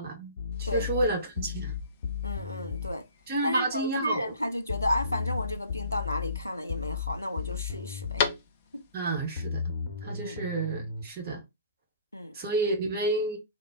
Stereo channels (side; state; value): both; inverted; correlation -0.50